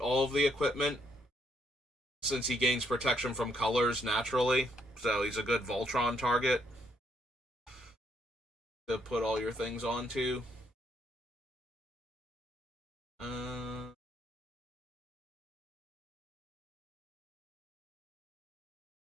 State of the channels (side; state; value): both; normal; correlation 0.72